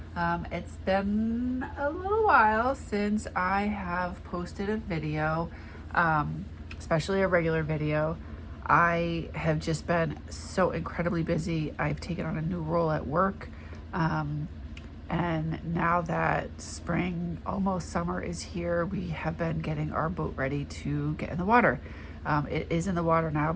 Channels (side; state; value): both; identical; correlation 1.00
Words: It's been a little while since I have posted a video, especially a regular video. I have just been so incredibly busy. I've taken on a new role at work. And now that spring, almost summer is here, we have been getting our boat ready to get in the water. It is in the water now,